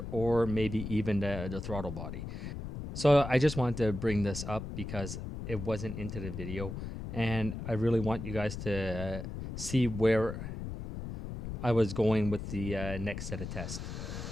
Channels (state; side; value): noise; left; rumble, 7 dB below the sound